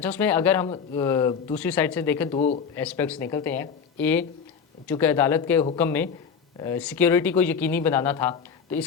اس میں اگر ہم دوسری سائڈ سے دیکھیں, دو ایسپیکٹس نکلتے ہیں. چونکہ عدالت کے حکم میں سیکیورٹی کو یقینی بنانا تھا, تو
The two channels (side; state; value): right; quieter; 6.5 dB